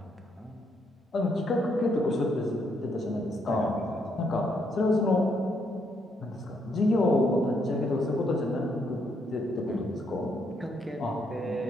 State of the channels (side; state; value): both; normal; correlation 0.75